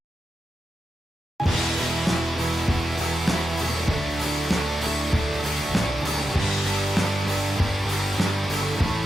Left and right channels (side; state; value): both; normal; correlation 0.88